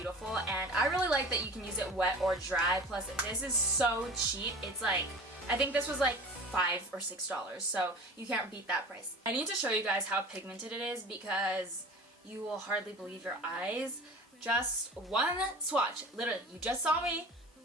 and I really like that you can use it wet or dry. Plus, this is so cheap. It's like, I think this was like $5 or $6, so you can't beat that price. I need to show you guys how pigmented it is because you will hardly believe your eyes. Just one swatch, literally, you just saw me,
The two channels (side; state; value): both; normal; correlation 0.39